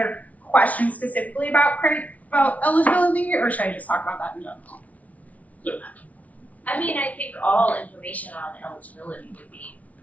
questions specifically about eligibility, or should I just talk about that in general? I mean, I think all information on eligibility would be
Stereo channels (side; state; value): right; late; 0.069 ms